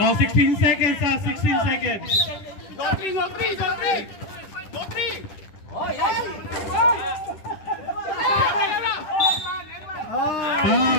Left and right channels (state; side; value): late; right; 10 ms